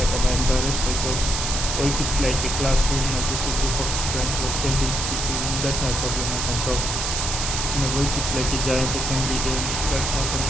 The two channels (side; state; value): right; noise; hiss, 1 dB below the sound